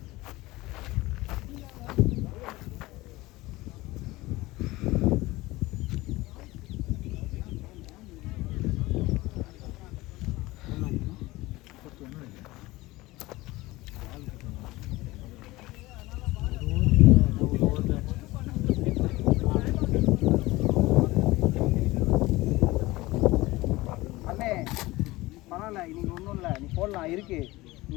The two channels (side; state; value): right; quieter; 19.8 dB